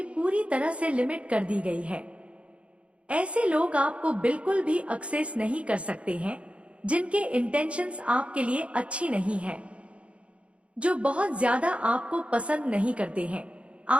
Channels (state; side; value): late; left; 0.061 ms